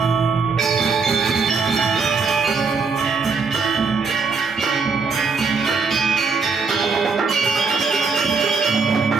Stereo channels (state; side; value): quieter; left; 4.7 dB